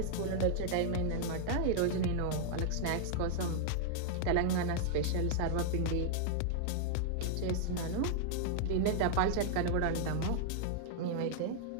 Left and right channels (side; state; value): both; different; correlation -0.01